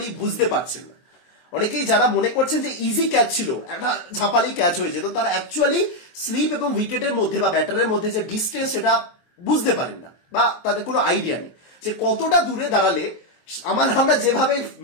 বুঝতে পারছেন না। অনেকেই যারা মনে করছেন যে ইজি ক্যাচ ছিল, একটা ঝাপালি ক্যাচ হয়ে যেত, তারা অ্যাকচুয়ালি স্লিপ এবং উইকেটের মধ্যে বা ব্যাটারের মধ্যে যে ডিস্টেন্স সেটা বুঝতে পারেন না, বা তাদের কোনো আইডিয়া নেই যে কতটা দূরে দাঁড়ালে আমরা যেভাবে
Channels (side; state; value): right; late; 23 ms